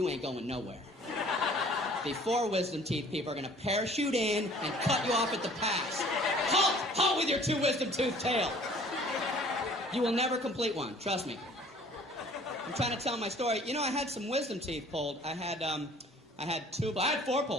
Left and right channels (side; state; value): both; normal; correlation 0.52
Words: ain't going nowhere. The 4 wisdom teeth people are going to parachute in and cut you off at the pass. Halt! Halt with your 2 wisdom tooth tale. You will never complete one, trust me. I'm trying to tell my story. You know, I had some wisdom teeth pulled. I had 4